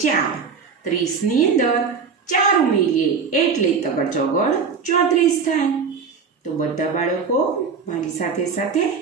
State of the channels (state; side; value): quieter; left; 5.6 dB